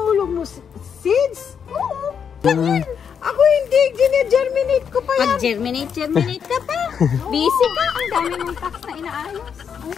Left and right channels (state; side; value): quieter; right; 7.3 dB